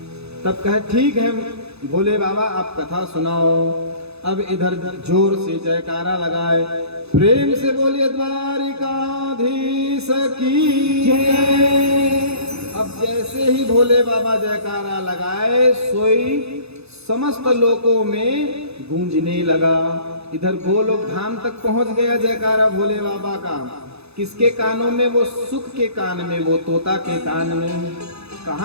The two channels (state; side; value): late; left; 0.79 ms